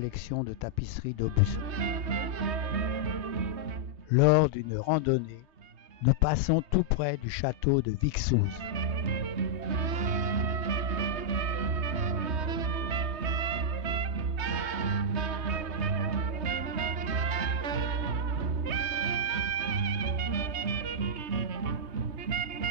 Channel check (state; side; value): late; left; 3.2 ms